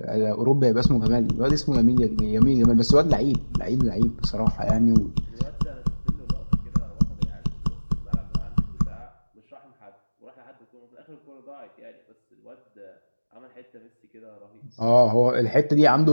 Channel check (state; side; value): inverted; both; correlation -1.00